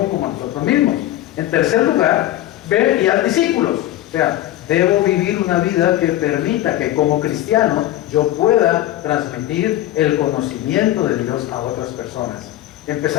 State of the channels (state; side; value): quieter; right; 14.2 dB